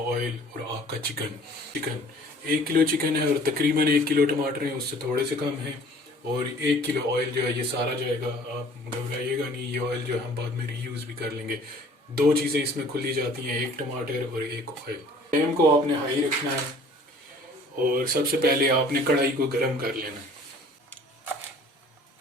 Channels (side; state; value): both; normal; correlation 0.52